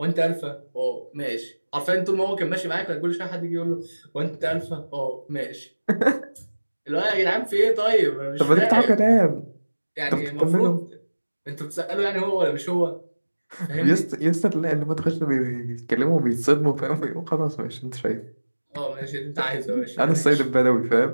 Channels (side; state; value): both; inverted; correlation -1.00